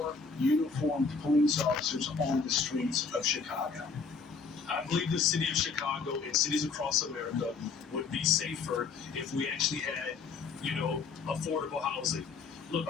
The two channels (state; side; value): quieter; right; 5.0 dB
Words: uniformed police officers on the streets of Chicago? I believe the city of Chicago and cities across America would be safer if we actually had, affordable housing. Look,